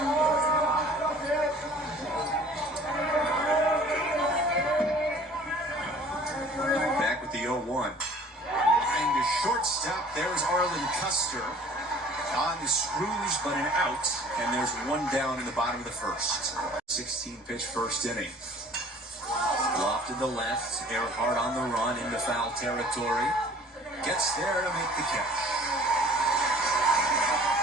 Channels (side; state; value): both; normal; correlation 0.50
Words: Back with the 0-1. Line to shortstop. There's Arlen Custer on the screws, but an out. And there's one down in the bottom of the first. 16-pitch first inning. Lofted the left. Airhart on the run into foul territory. Gets there to make the catch.